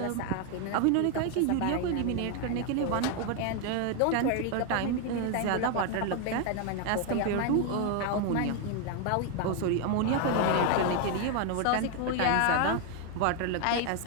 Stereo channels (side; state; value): both; different; correlation 0.01